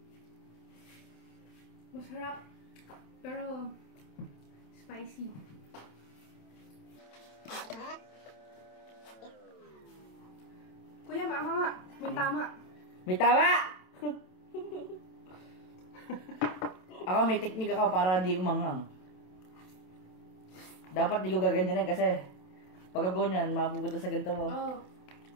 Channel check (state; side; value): late; right; 27 ms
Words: Masarap, pero spicy. Kuya, mama nga. May tama. May tawa! Ako may teknik ako para di umanghang. Dapat di ko gaganyanin kasi pag ganyan, mapupunta sa ganito mo. Oh.